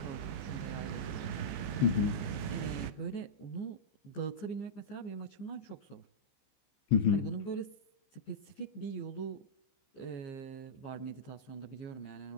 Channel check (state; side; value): late; right; 15 ms